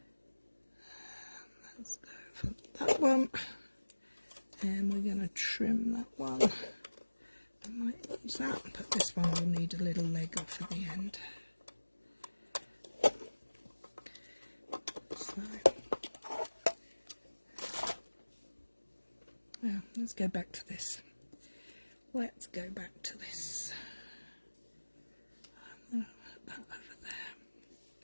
Let's go for that one. And we're going to trim that one. I might use that, but this one will need a little leg off at the end. So, now let's go back to this. Let's go back to this. I'm going to put that over there.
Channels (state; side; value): inverted; both; correlation -1.00